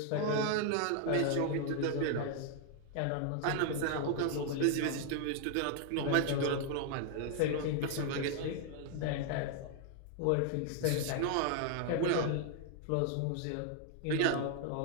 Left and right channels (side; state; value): both; different; correlation 0.00